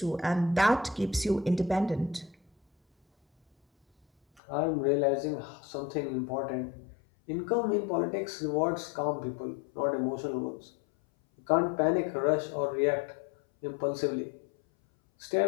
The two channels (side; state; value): right; drops out; at 4.4 s